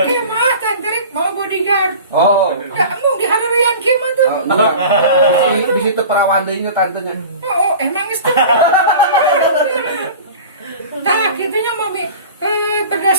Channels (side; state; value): both; inverted; correlation -0.38